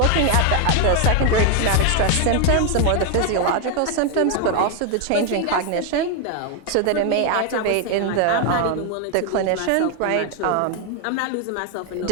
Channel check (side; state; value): both; different; correlation 0.01